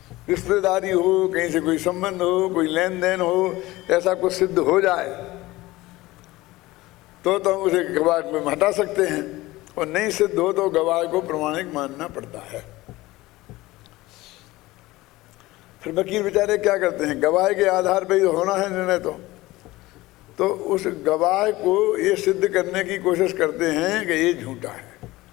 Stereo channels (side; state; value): right; quieter; 19.0 dB